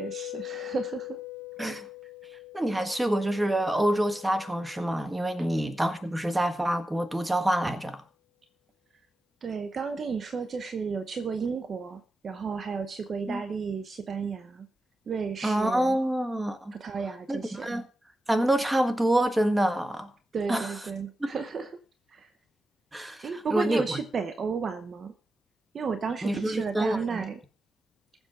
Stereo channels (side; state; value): both; normal; correlation 0.91